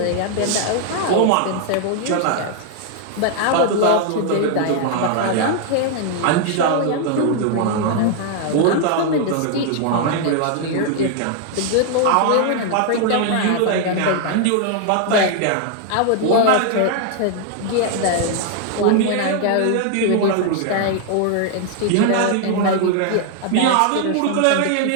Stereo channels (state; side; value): different; both; correlation 0.00